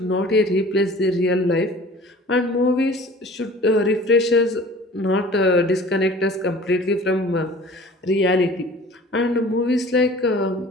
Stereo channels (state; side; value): normal; both; correlation 0.46